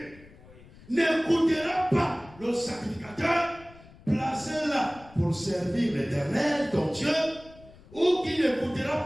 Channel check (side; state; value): left; noise; rumble, 22 dB below the sound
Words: n'écoutera pas le sacrificateur, placé là pour servir l'Éternel, ton Dieu, ou qui n'écoutera